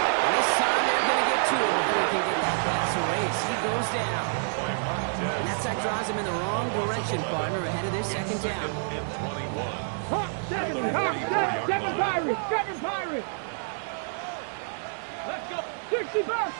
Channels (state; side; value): silent; left; digital silence